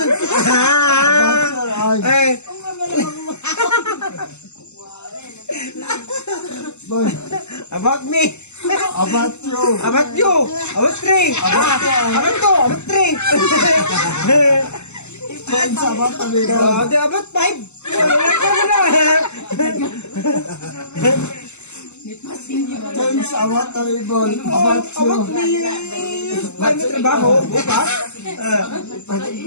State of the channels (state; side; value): late; right; 0.82 ms